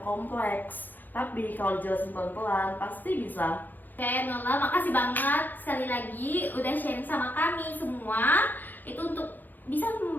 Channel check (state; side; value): late; right; 0.086 ms